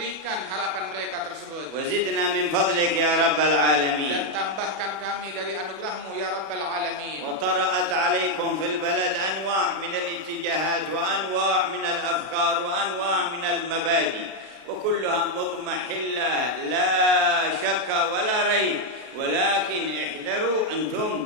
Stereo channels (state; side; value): late; left; 33 ms